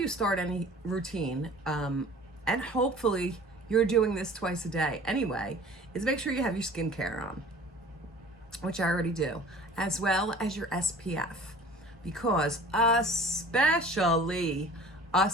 start any routine, and hopefully you're doing this twice a day anyway, is make sure you have your skincare on, which I already do, as well as your SPF. Because especially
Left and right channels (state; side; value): normal; both; correlation 0.45